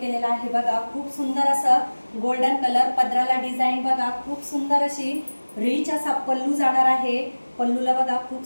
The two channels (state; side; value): inverted; both; correlation -1.00